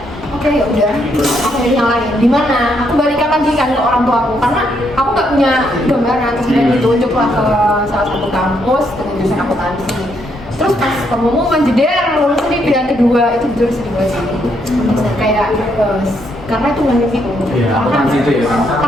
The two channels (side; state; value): both; normal; correlation 0.75